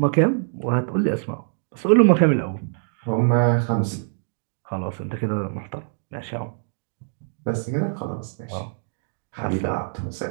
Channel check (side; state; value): left; silent; digital silence